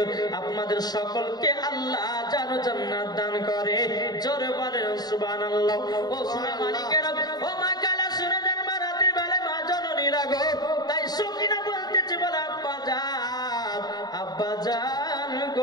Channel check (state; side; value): late; right; 0.19 ms